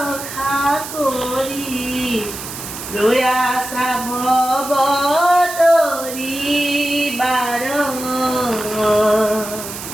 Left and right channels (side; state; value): right; noise; hiss, 10 dB below the sound